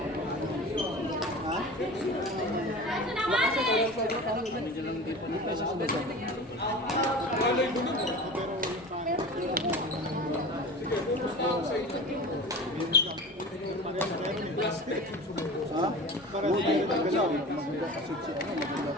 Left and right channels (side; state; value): both; normal; correlation 0.35